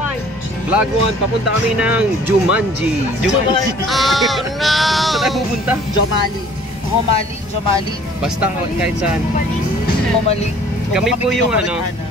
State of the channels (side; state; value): both; normal; correlation 0.53